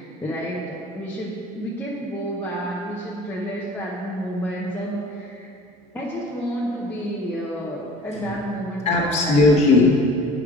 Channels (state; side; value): normal; both; correlation 0.45